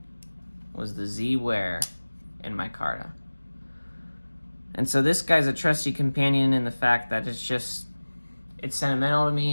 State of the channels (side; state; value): both; inverted; correlation -1.00